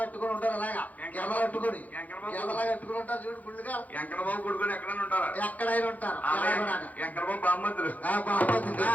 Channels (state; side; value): late; right; 0.078 ms